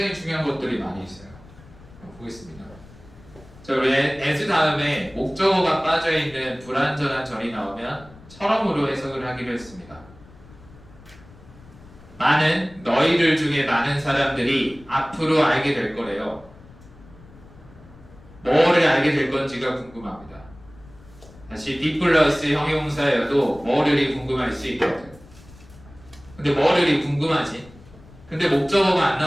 중요한 것들이 많이 있어요. 보겠습니다. 자, 우리 as 다음에 목적어가 빠져있는 불완전한 절이 나오면 처럼으로 해석을 하기로 했습니다. 너희들 중에 많은 사람들이 앞으로 알게 될 거래요. 뭐를 알게 될 건지가 궁금합니다. 다시 be 플러스 형용사여도 뭐를이 궁금할 수 있거든. 근데 뭐를이 궁금하지? 근데 목적어가 안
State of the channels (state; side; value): noise; left; rumble, 22 dB below the sound